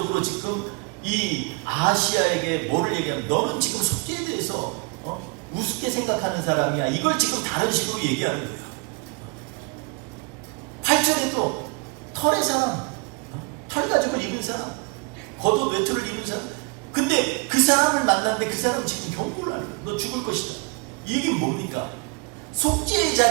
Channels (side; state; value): left; quieter; 30.7 dB